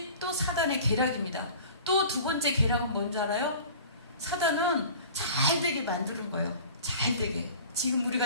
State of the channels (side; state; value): both; inverted; correlation -0.42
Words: 또 사단의 계략입니다. 또 두 번째 계략은 뭔지 알아요? 사단은 잘 되게 만드는 거예요. 잘 되게. 지금